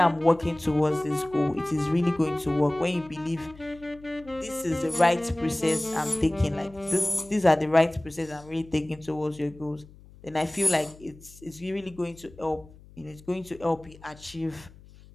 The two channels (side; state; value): left; noise; hum, 22 dB below the sound